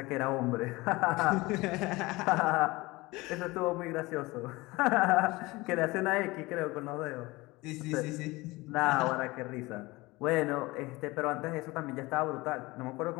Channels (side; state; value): right; quieter; 21.7 dB